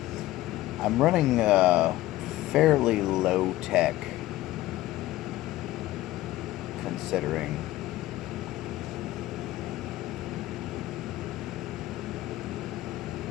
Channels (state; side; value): quieter; right; 16.2 dB